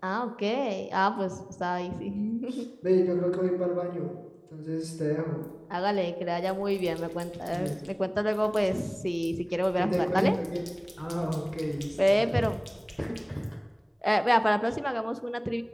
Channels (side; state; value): both; identical; correlation 1.00